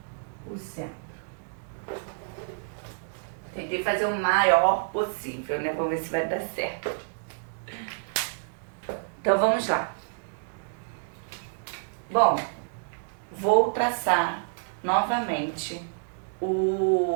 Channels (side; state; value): left; silent; digital silence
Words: o centro. Tentei fazer o maior possível, né? Vamos ver se vai dar certo. Então vamos lá. Bom, vou traçar novamente